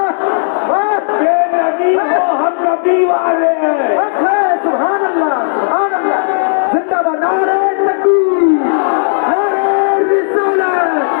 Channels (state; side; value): silent; right; digital silence